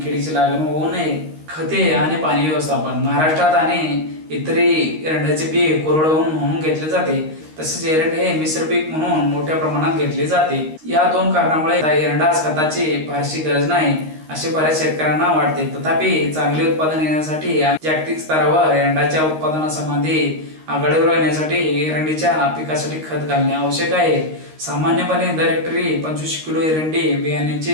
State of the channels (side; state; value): left; late; 13 ms